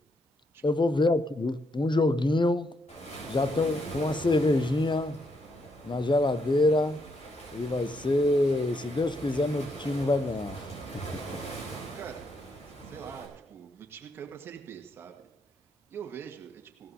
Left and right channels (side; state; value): both; normal; correlation 0.77